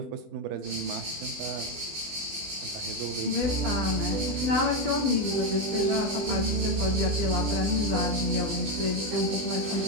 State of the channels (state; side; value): late; left; 20 ms